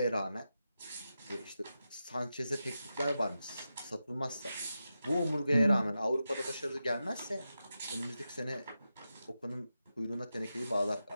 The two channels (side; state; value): both; inverted; correlation -0.90